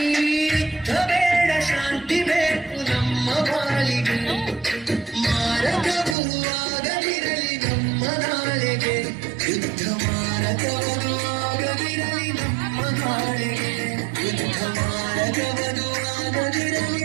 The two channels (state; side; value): drops out; left; at 6.2 s